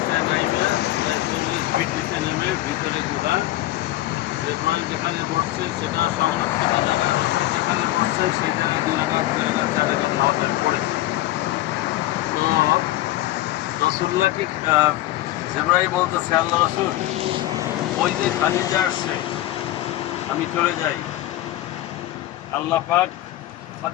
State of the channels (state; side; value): quieter; right; 15.7 dB